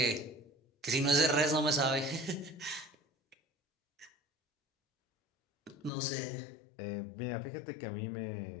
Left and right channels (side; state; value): right; drops out; at 5.9 s